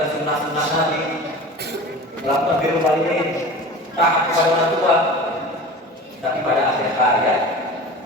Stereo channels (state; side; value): normal; both; correlation 0.35